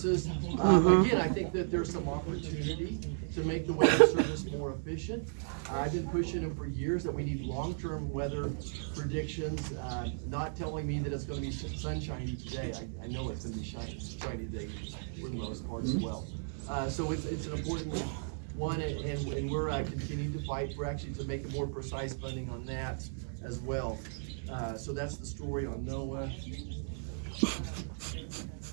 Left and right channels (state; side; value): silent; left; digital silence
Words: Again, I think that there's some opportunity to make the weather service more efficient. I've been pushing them for years that we need long-term weather predictions, not telling me that it's going to be sunshiny today. I know it's going to be shiny today for the most part as well. So it's an important one, and we're continuing to fight for actually to make a more precise funding on that as well. So that's the story on NOAA.